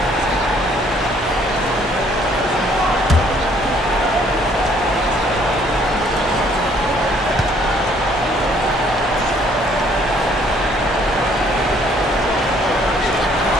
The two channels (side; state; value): both; normal; correlation 0.62